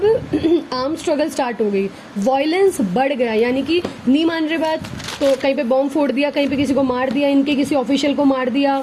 आर्म स्ट्रगल स्टार्ट हो गई। वायलेंस बढ़ गया, यानी कि नहीं मान रहे बात तो कहीं पे बॉम्ब फोड़ दिया, कहीं पे किसी को मार दिया, इनके किसी ऑफिशियल को मार दिया,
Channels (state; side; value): identical; both; correlation 1.00